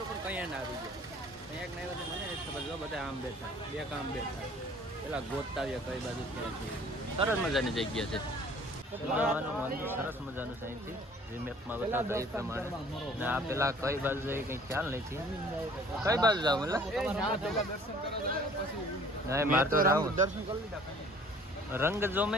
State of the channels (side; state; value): both; normal; correlation 0.53